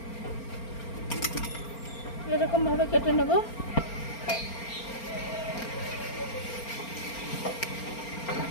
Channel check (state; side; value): late; right; 4.4 ms